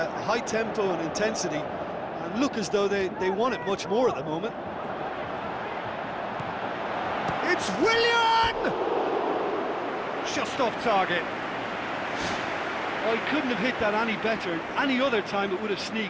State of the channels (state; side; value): identical; both; correlation 1.00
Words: high tempo and intensity and look as though they want it much more at the moment. It's Willian! Just off target. Oh, he couldn't have hit that any better. Any other time it would have